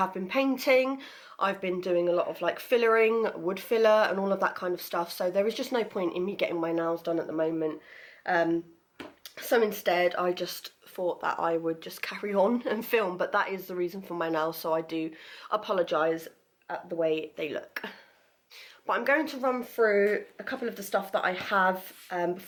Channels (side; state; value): both; identical; correlation 1.00